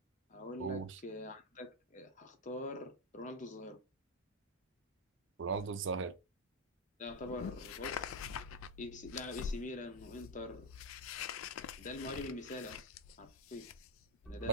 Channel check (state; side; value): normal; both; correlation 0.07